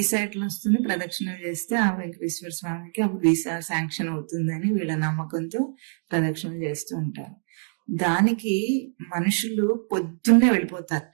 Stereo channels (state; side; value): silent; left; digital silence